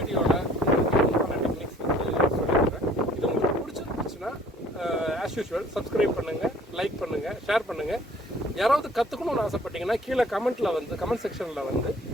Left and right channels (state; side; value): normal; both; correlation 0.55